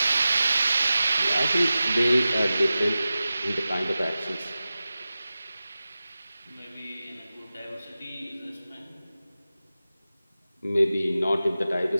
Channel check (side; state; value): both; inverted; correlation -0.95